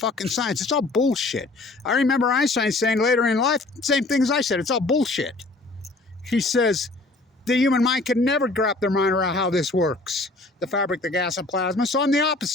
science. It's all bullshit. I remember Einstein saying later in life, same thing as I said, it's all bullshit. He says, the human mind can never wrap their mind around how this works. The fabric, the gas, and plasma. So I'm the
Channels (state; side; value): quieter; right; 3.1 dB